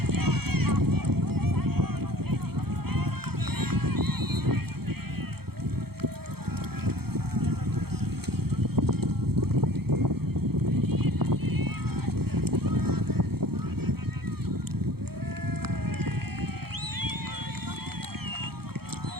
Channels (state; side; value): late; left; 0.96 ms